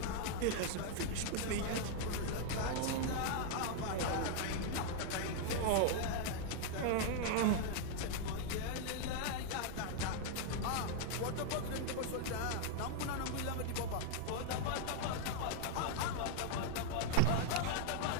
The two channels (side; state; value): both; different; correlation 0.00